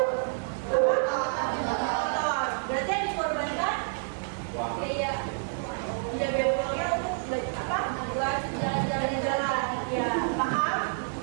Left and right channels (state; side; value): silent; left; digital silence